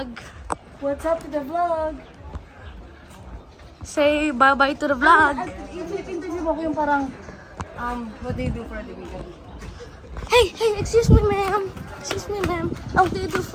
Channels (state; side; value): identical; both; correlation 1.00